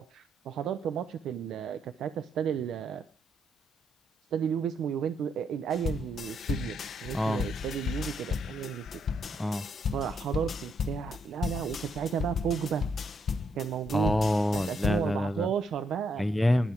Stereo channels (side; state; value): both; normal; correlation 0.76